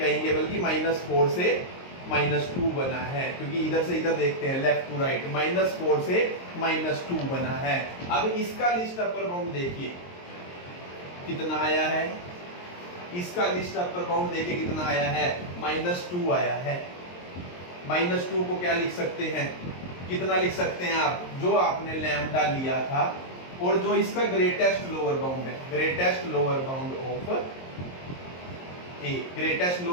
बल्कि -4 से -2 बना है, क्योंकि इधर से इधर देखते हैं लेफ्ट टू राइट, -4 से -2 बना है। अब इसका लिस्ट अपर बाउंड देखिए कितना आया है, इसका लिस्ट अपर बाउंड देखिए कितना आया है, -2 आया है। -2 को क्या लिख सकते हैं, कितना लिख सकते हैं आप, जो आपने लैम्डा लिया था और जो इसका ग्रेटेस्ट लोअर बाउंड है, greatest lower bound of A, greatest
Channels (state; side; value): late; right; 22 ms